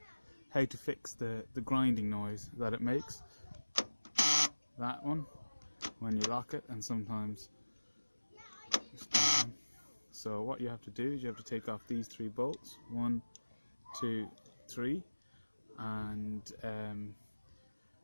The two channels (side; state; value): both; inverted; correlation -1.00